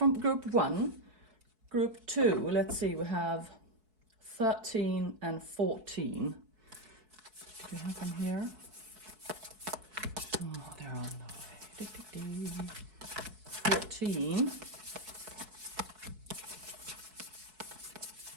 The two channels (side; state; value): left; late; 4.7 ms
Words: group 1. Group 2, let's see, we have 13 and 14. Do you have them here? Oh, they're on the way. 14.